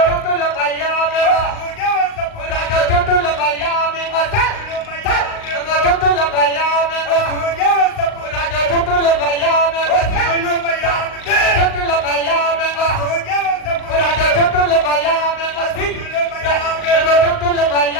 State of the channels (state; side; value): late; right; 38 ms